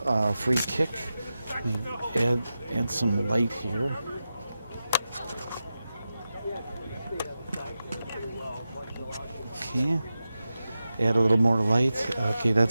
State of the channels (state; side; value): inverted; both; correlation -0.92